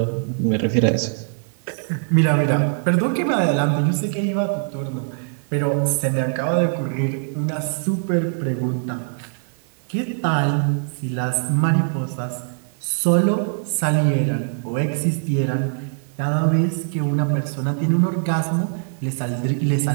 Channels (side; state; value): left; silent; digital silence